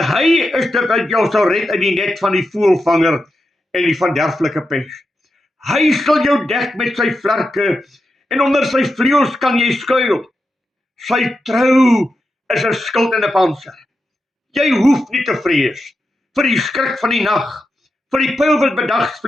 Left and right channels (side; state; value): both; normal; correlation 0.88